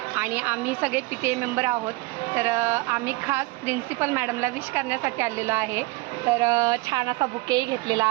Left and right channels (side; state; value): left; quieter; 23.3 dB